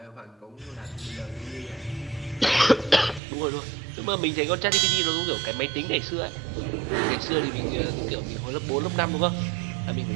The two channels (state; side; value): drops out; left; at 3.2 s